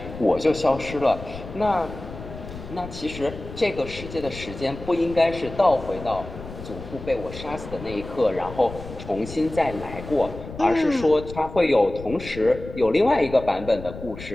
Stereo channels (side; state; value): left; noise; rumble, 12 dB below the sound